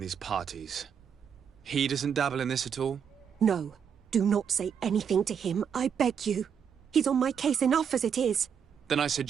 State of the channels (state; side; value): quieter; left; 7.5 dB